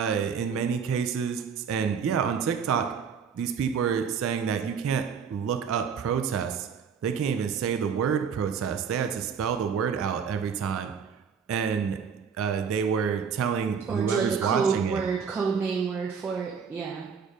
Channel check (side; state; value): left; quieter; 6.6 dB